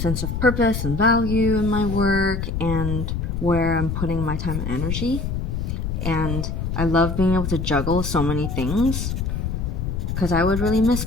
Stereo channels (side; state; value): left; noise; rumble, 3 dB below the sound